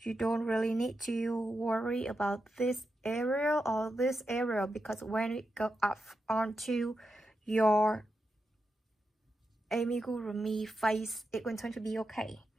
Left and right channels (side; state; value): both; normal; correlation 0.87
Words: don't really need to worry about this area or this area, because when it goes up onto your amigurumi face, it's going to be okay.